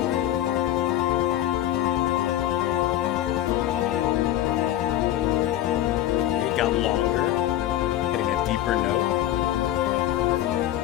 It got longer, hitting a deeper note.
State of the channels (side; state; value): right; quieter; 13.2 dB